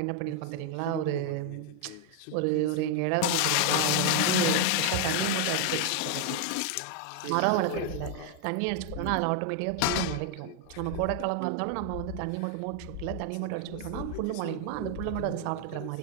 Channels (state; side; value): different; both; correlation 0.01